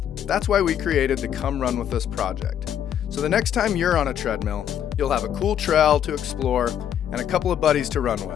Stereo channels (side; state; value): right; quieter; 9.7 dB